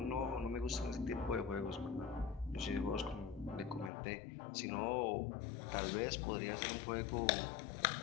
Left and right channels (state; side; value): drops out; right; at 3.9 s